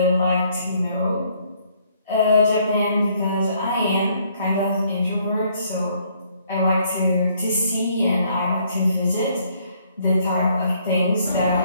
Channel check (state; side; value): inverted; both; correlation -0.66